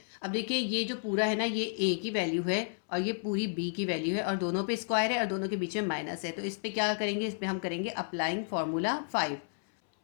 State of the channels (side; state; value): right; silent; 57 dB below the other